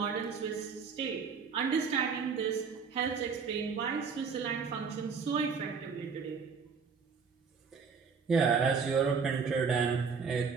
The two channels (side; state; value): left; quieter; 5.6 dB